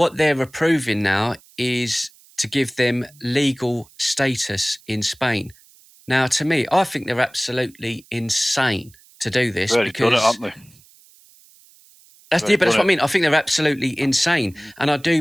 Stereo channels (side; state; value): right; noise; hiss, 27 dB below the sound